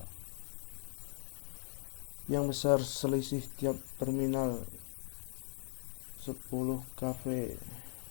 Yang besar selisih tiap terminal 10 kV.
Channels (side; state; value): right; silent; 52 dB below the other